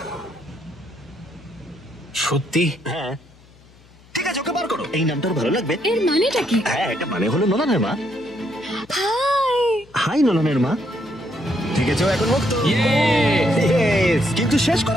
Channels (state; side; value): noise; left; hum, 26 dB below the sound